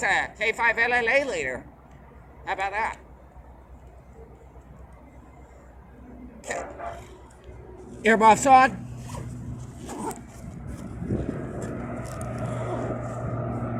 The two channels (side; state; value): both; identical; correlation 1.00